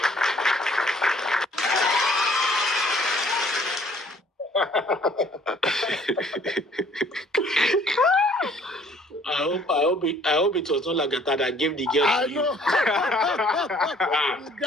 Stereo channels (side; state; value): both; normal; correlation 0.58